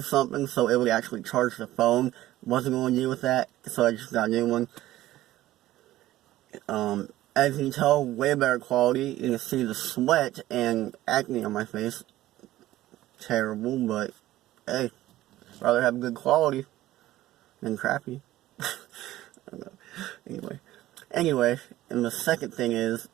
something so it would actually charge the phone. Wasn't going to deal with that, so I just got a new one. As you can tell, way better quality. You can see the sweat and acne on my face. Terrible, but, hey, rather have good quality than crappy. I don't know. Anyway, and the second thing is,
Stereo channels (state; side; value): quieter; left; 15.3 dB